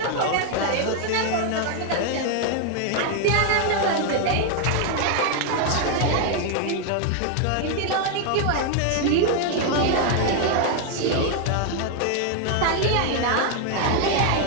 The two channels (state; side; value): different; both; correlation 0.00